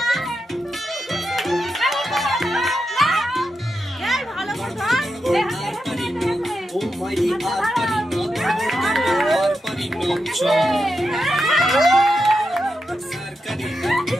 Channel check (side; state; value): both; normal; correlation 0.87